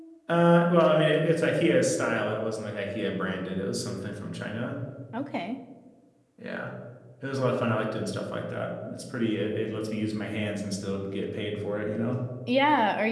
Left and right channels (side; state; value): both; identical; correlation 1.00